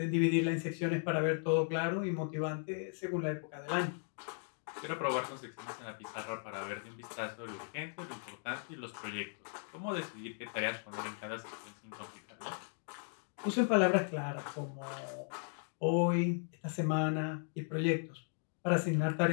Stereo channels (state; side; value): silent; right; 53 dB below the other